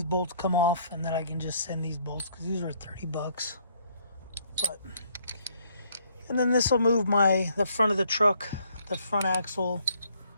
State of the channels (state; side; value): inverted; both; correlation -0.66